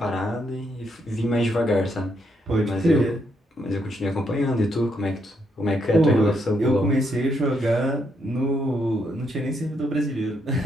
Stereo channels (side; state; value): both; normal; correlation 0.76